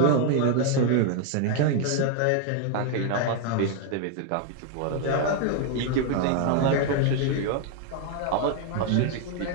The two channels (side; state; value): both; different; correlation 0.00